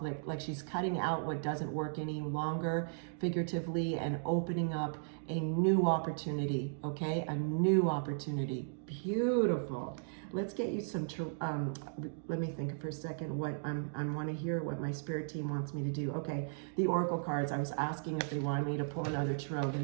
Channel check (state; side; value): silent; left; digital silence